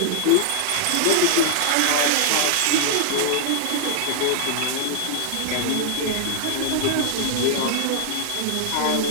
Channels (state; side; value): different; both; correlation 0.00